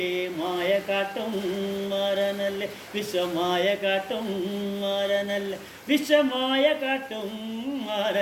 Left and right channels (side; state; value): both; identical; correlation 1.00